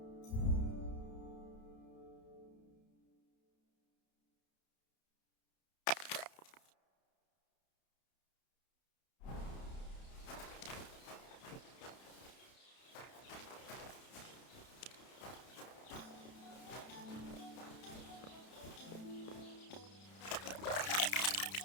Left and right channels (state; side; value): late; right; 31 ms